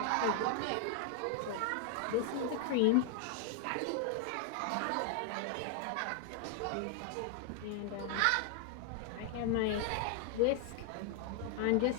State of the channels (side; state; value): both; different; correlation 0.00